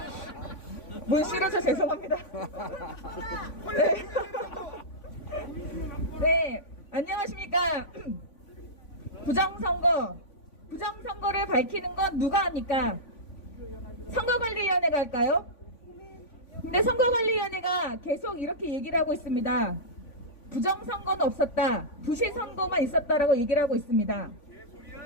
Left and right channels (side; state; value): right; late; 3.5 ms